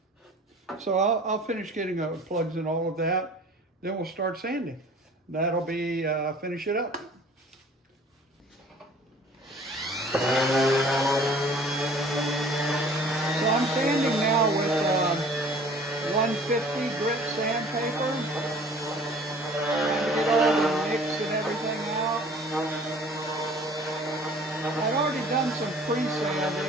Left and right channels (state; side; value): normal; both; correlation 0.50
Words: So I'll finish getting plugs in all of that. Then we'll start sanding. That'll be finish it up. So I'm sanding now with 150 grit sandpaper. Trying to get all the nicks and everything out. I've already done some